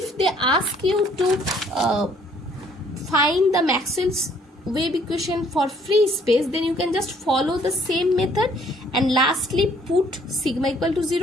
they ask you to find the Maxwell's wave equation for free space, then you can just follow the same method and lastly put sigma equal to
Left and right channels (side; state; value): both; normal; correlation 0.62